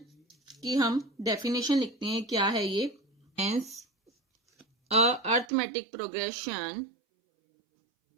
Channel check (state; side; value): drops out; left; at 5.5 s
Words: की हम डेफिनेशन लिखते हैं। क्या है ये? हेंस अर्थमेटिक प्रोग्रेशन